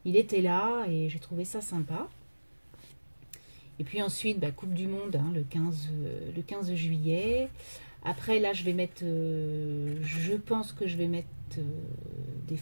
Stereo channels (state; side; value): inverted; both; correlation -1.00